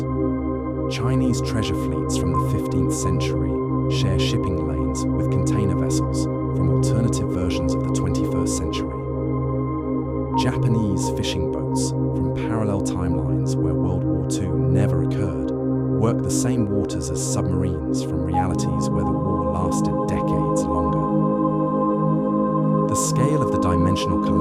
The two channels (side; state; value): both; identical; correlation 1.00